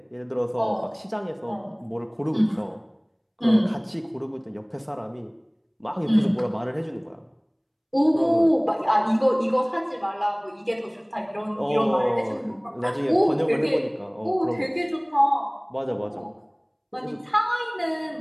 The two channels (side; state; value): both; identical; correlation 1.00